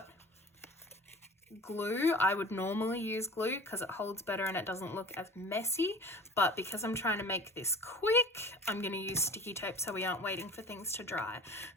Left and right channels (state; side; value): normal; both; correlation 0.40